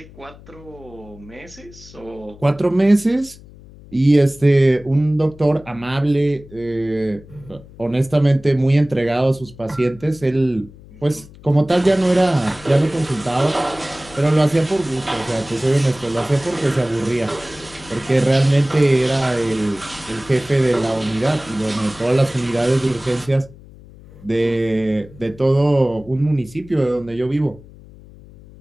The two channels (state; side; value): noise; left; hum, 21 dB below the sound